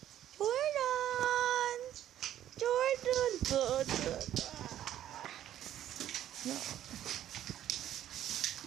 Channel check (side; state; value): left; quieter; 11.7 dB